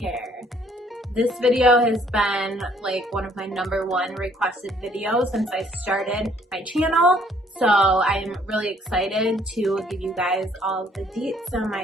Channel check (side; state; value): both; normal; correlation 0.63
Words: This video has been like one of my #1 requested videos since I started my channel. So I'm really excited to give you guys all the deets on